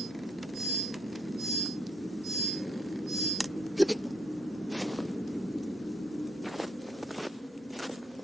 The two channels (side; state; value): both; normal; correlation 0.72